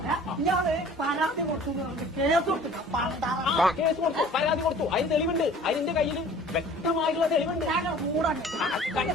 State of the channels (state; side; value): normal; both; correlation 0.48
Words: ഇയാള് പരാതി കൊടുത്തു കേസ് കൊടുത്തു. കേസ് കൊടുത്തു, പരാതി കൊടുത്തു. അതിന് തെളിവുണ്ട്. അതിന്റെ കയ്യിൽ വ്യക്തമായിട്ടുള്ള തെളിവുണ്ട്.